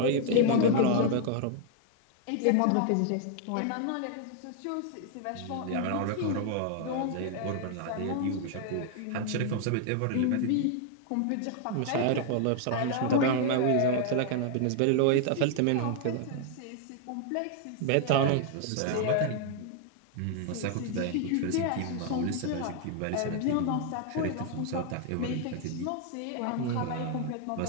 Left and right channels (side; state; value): both; different; correlation 0.00